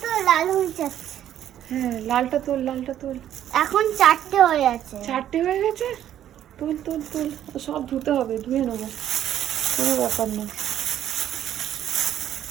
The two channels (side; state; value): left; quieter; 11.1 dB